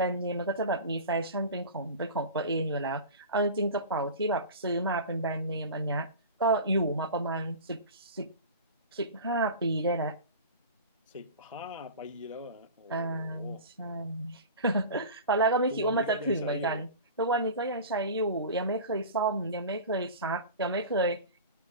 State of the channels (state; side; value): inverted; both; correlation -0.34